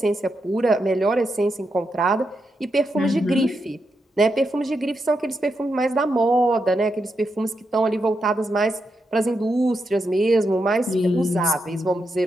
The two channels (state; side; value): normal; both; correlation 0.84